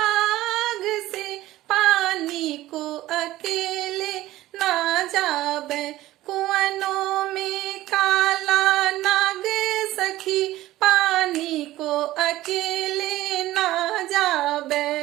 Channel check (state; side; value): quieter; left; 16.0 dB